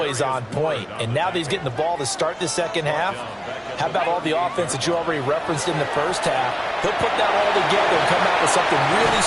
on point. And now that he's getting the ball to start the second half, how about all the offense that you already referenced in the first half? He'll put that all together and come out with something really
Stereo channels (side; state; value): both; identical; correlation 1.00